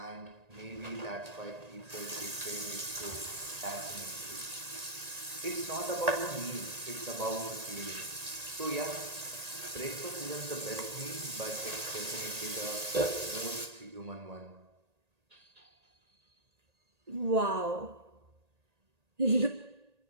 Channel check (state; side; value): late; left; 1.8 ms